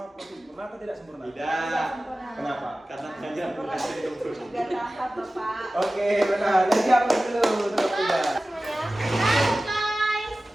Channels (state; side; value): normal; both; correlation 0.96